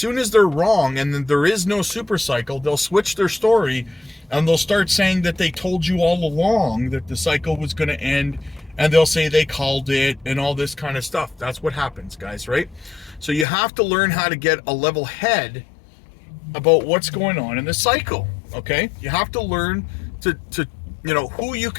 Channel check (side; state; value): right; drops out; at 13.5 s